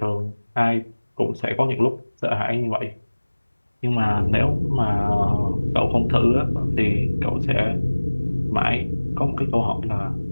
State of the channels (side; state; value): both; inverted; correlation -1.00